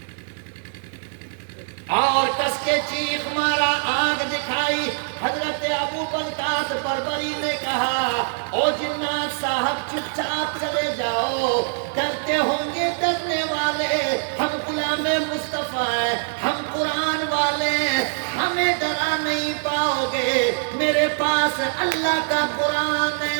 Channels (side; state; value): left; silent; digital silence